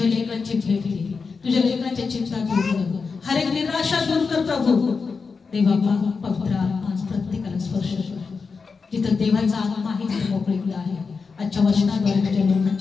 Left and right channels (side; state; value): right; quieter; 4.9 dB